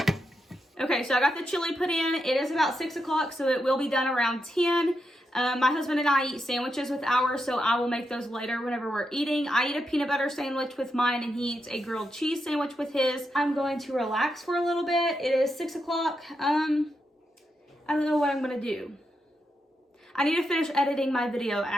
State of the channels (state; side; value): normal; both; correlation 0.84